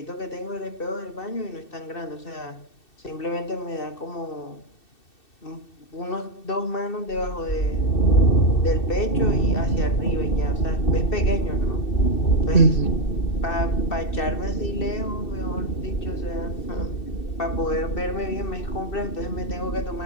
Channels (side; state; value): right; late; 2.6 ms